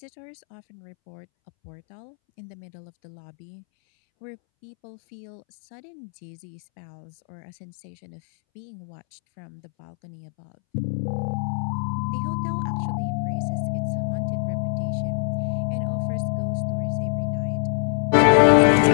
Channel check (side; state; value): right; silent; 61 dB below the other